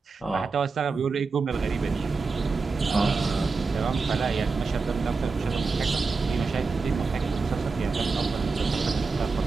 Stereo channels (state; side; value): quieter; left; 4.4 dB